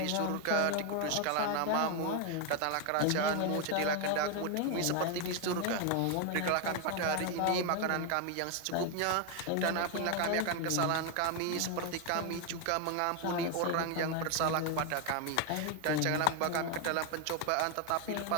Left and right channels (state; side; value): different; both; correlation 0.01